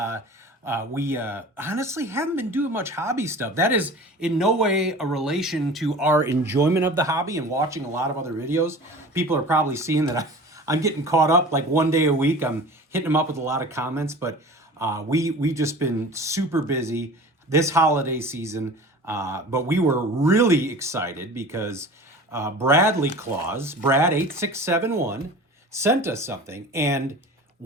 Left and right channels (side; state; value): both; normal; correlation 0.39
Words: We honestly haven't been doing much hobby stuff. That is in no way a relation to our enjoyment of the hobby and watching a lot of other videos. People are probably seeing that I'm getting caught up like one day a week. I'm hitting them up with a lot of comments, but we've just been super busy this holiday season. But we were really excited because Bradley Claus, Brad8671, sent us something. And